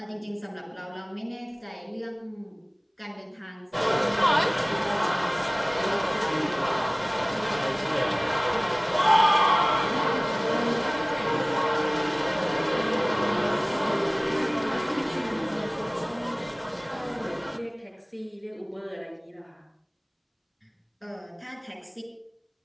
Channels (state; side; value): identical; both; correlation 1.00